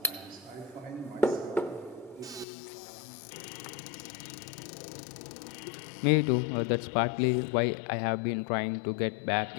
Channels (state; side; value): drops out; right; at 2.5 s